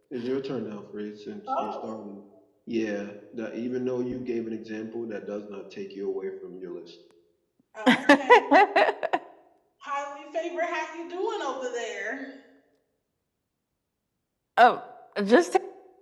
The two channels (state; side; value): identical; both; correlation 1.00